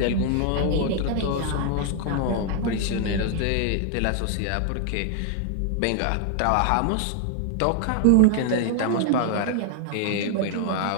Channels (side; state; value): both; different; correlation 0.00